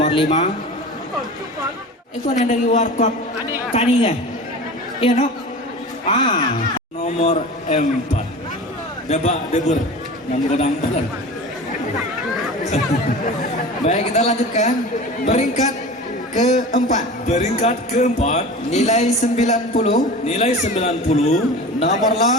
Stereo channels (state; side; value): normal; both; correlation 0.35